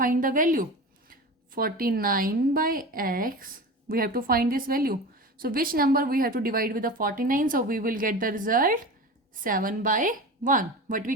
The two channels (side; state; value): both; normal; correlation 0.30